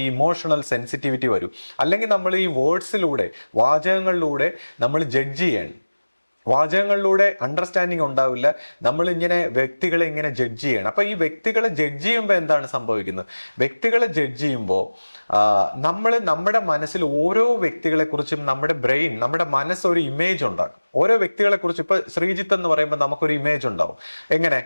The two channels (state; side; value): inverted; both; correlation -1.00